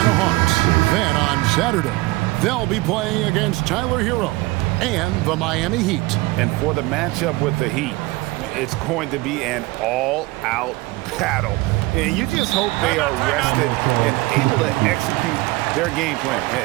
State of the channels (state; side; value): quieter; left; 21.3 dB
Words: Hawks. Then on Saturday, they'll be playing against Tyler Hero and the Miami Heat. And for the matchup with the Heat, it's going to be an all-out battle. And you just hope they are rested and able to execute their game plan,